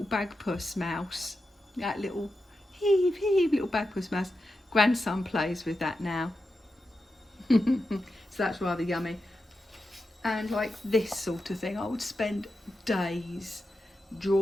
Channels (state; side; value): normal; both; correlation 0.89